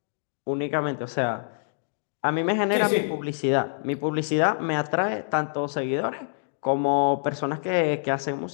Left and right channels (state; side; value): silent; right; digital silence